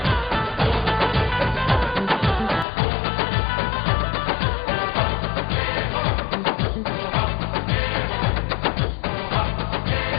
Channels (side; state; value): right; drops out; at 2.7 s